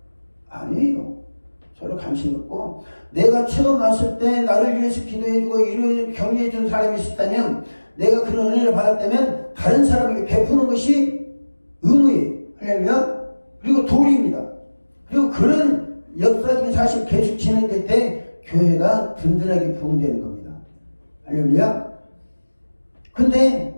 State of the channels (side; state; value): both; inverted; correlation -1.00